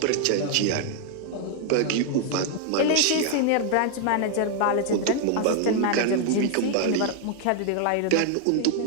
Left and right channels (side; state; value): both; different; correlation 0.00